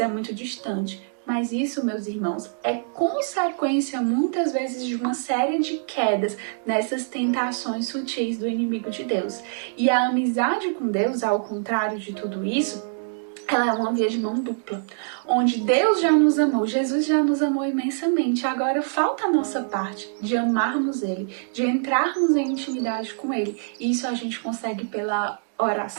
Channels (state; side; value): silent; left; digital silence